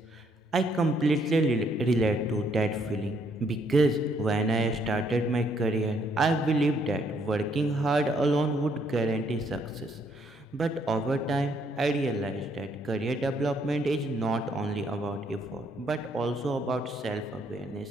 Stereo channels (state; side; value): normal; both; correlation 0.69